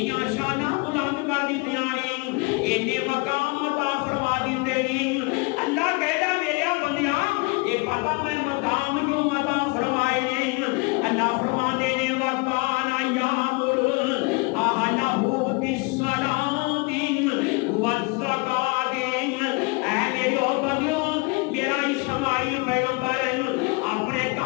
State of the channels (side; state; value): right; quieter; 28.6 dB